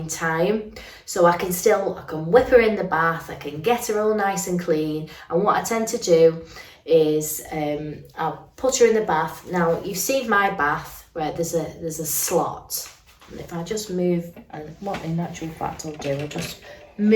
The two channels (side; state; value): both; identical; correlation 1.00